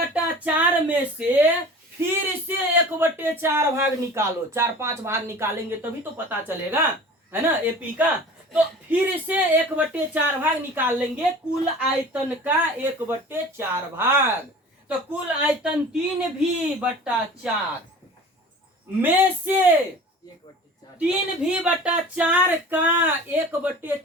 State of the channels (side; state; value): both; normal; correlation 0.41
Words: में से फिर से 1/4 भाग निकालो। 4-5 भाग निकालेंगे तभी तो पता चलेगा, है ना, एपी का। तो फिर से 1/4 भाग निकाल लेंगे कुल आयतन का 1/4 भाग। तो कुल आयतन 3v/4 में से 3v/4 का